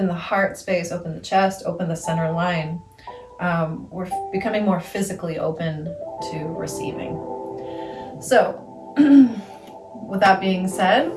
the heart space, open the chest, open the center line, we're becoming more physically open to receiving. So with that being said,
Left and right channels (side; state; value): both; identical; correlation 1.00